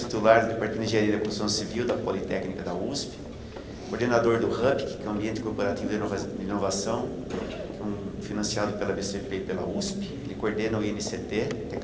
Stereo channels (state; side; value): identical; both; correlation 1.00